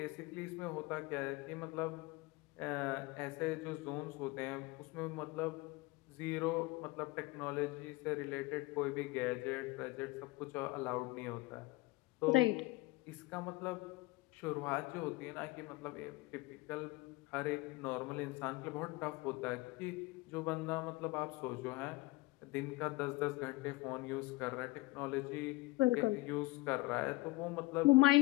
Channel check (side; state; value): right; quieter; 21.7 dB